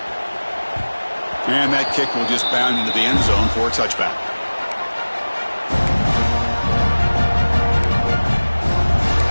And that kick will just bound into the end zone for a touchback.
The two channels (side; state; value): both; inverted; correlation -1.00